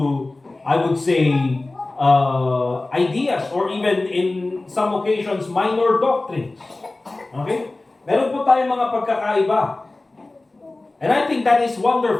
I would say, ideas or even in some occasions, minor doctrines. Okay? Meron po tayong mga pagkakaiba. And I think that is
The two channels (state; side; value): quieter; right; 3.0 dB